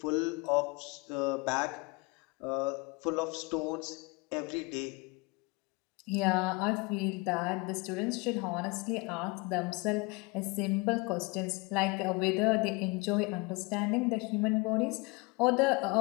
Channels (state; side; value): quieter; right; 26.4 dB